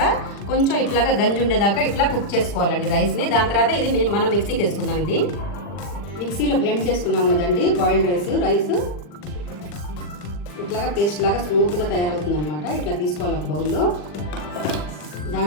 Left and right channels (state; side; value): late; right; 40 ms